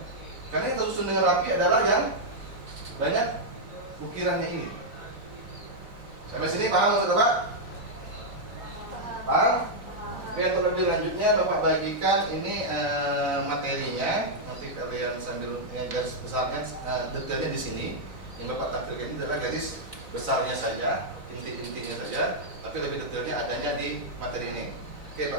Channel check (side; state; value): left; late; 4.0 ms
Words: Karena yang tersusun dengan rapi adalah yang banyak ukirannya ini. Sampai sini paham maksud Bapak? Paham? Oke, untuk lebih lanjutnya Bapak bagikan ini materinya. Nanti kalian sambil garis besarnya, detailnya di sini. Yang Bapak tampilkan ini adalah garis besarnya saja, inti-intinya saja, tapi lebih detailnya adanya di materi ini. Oke,